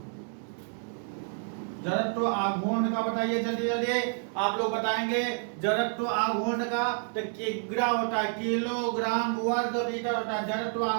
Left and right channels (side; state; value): left; silent; 58 dB below the other